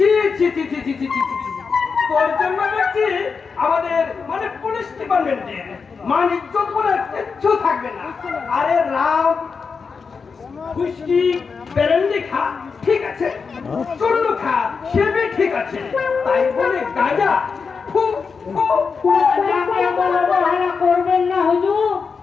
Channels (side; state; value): right; quieter; 5.3 dB